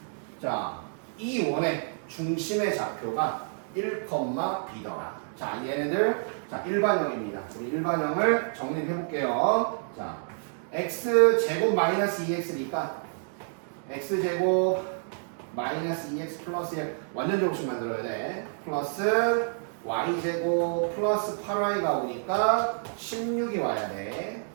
자 이 원의 중심의 좌표가 1,B더라. 자 얘네들 자 일반형입니다. 우리 일반형을 정리해 볼게요. 자 x제곱 마이너스 2x니까 x제곱 마이너스 2x 플러스 1 완전 제곱식 만들어야 돼. 플러스 y제곱 플러스 8y가 오니까 16이 와야 돼.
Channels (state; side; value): silent; left; digital silence